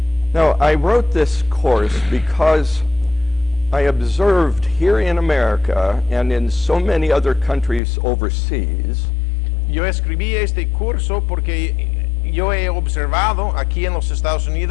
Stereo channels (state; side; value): drops out; right; at 7.8 s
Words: Now, I wrote this course because I observed here in America and in so many other countries overseas Yo escribí este curso porque yo he observado aquí en los Estados